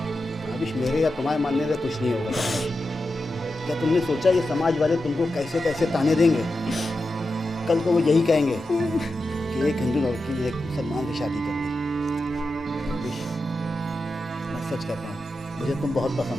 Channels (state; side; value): normal; both; correlation 0.90